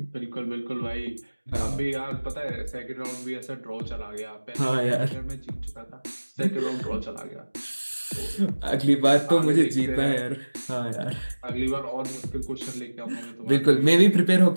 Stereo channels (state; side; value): inverted; both; correlation -1.00